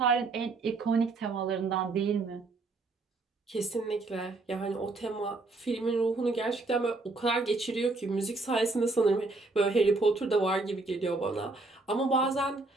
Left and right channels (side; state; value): left; quieter; 3.4 dB